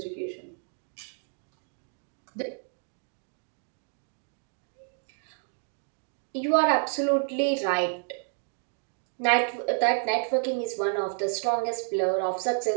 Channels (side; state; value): left; silent; 58 dB below the other